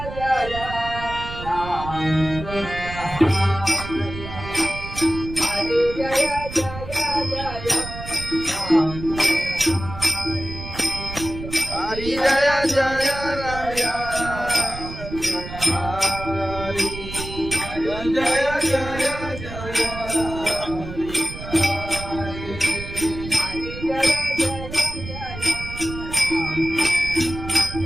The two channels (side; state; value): right; noise; rumble, 10 dB below the sound